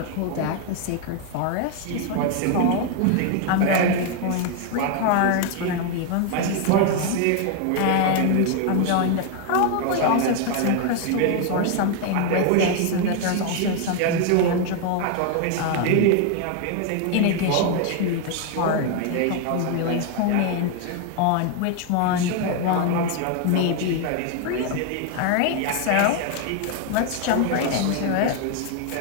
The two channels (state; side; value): different; both; correlation 0.01